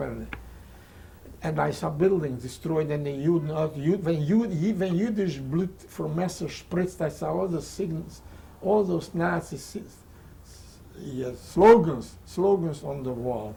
I saw buildings destroyed and when Yiddish blood from Messer spritzed, I saw all the signals, all those Nazi slogans on the wall.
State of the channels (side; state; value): both; identical; correlation 1.00